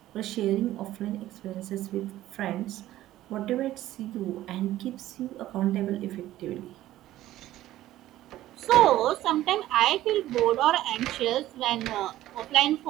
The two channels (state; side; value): quieter; left; 14.5 dB